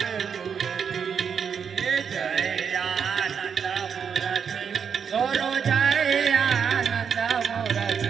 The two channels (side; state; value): left; quieter; 6.9 dB